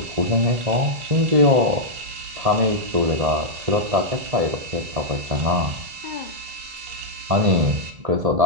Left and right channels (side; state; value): left; late; 1.7 ms